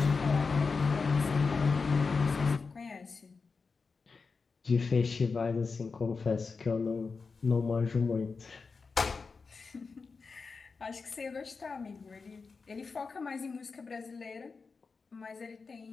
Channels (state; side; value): quieter; right; 4.7 dB